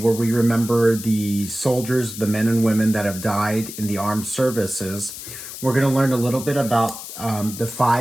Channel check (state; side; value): noise; left; hiss, 11 dB below the sound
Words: we remember the soldiers, the men and women that have died in the armed services, we're going to learn a little bit about the